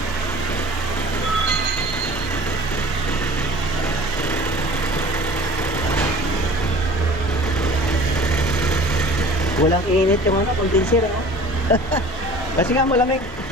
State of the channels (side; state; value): both; normal; correlation 0.44